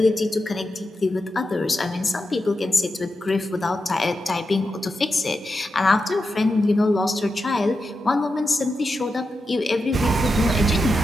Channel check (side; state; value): both; normal; correlation 0.89